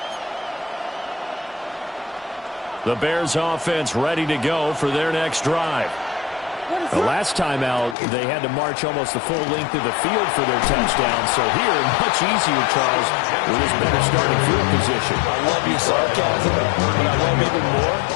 The Bears offense ready to go for their next drive. The last time out, they had to march almost the full length of the field for their touchdown. So here, much easier, Charles, with his better starting field position. I love your sarcasm, but I love even more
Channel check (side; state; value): right; drops out; at 8.0 s